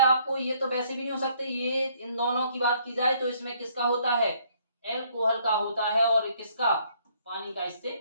आपको, ये तो वैसे भी नहीं हो सकते, ये इन दोनों की बात की जाए तो इसमें किसका होता है, एल्कोहल का होता है, और किसका, पानी का इससे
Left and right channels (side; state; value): both; inverted; correlation -0.65